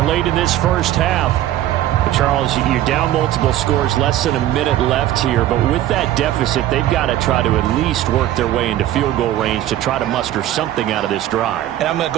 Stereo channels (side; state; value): left; quieter; 13.2 dB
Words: late in this first half. Charles, you're down multiple scores, less than a minute left here, but with that deficit, they've got to try to at least work their way into field goal range to try to muster something out of this drive. And I'm going to